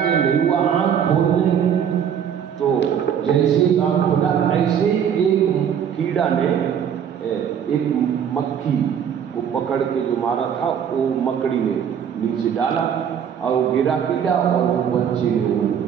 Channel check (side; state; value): left; quieter; 8.4 dB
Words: नहीं हुआ, आँख खोलने तो जैसे आँख खोला ऐसे एक कीड़ा ने एक मक्खी को पकड़ के जो मारा था वो मकड़ी ने नीचे डाला और वो गिरा कीड़ा और वो बच्चे ने वो